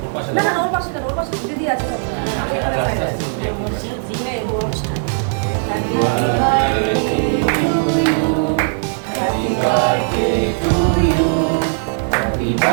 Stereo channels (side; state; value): left; silent; 67 dB below the other